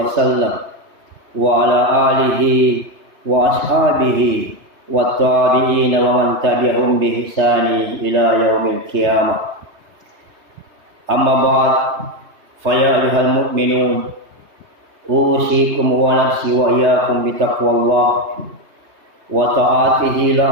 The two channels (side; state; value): left; late; 3.3 ms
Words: وسلم وعلى آله وأصحابه والتابعين ومن تبعهم بإحسان إلى يوم القيامة أما بعد فيا أيها المؤمنون أوصيكم ونفسي وإياكم بتقوى الله وطاعته